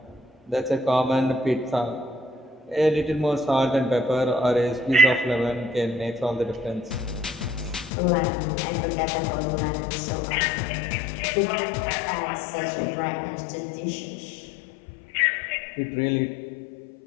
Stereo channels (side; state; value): right; drops out; at 7.9 s